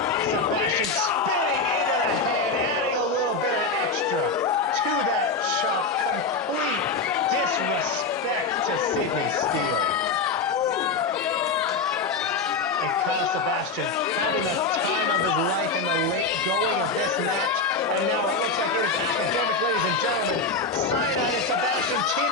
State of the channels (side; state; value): right; quieter; 4.1 dB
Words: Sebastian spinning into the hand, adding a little bit of extra to that chop. Complete disrespect to Sydney Steele. And Kyle Sebastian having the time of his life in the late going of this match. And now it looks like it is academic, ladies and gentlemen. Cyanide and Sebastian